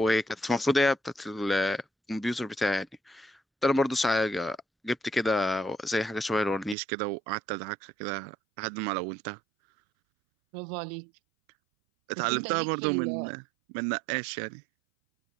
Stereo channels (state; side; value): drops out; left; at 6.8 s